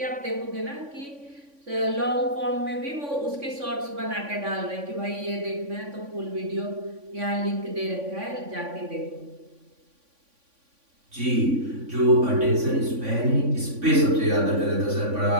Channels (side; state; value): left; late; 3.5 ms